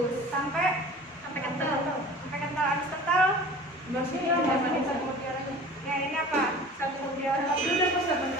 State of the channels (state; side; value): normal; both; correlation 0.42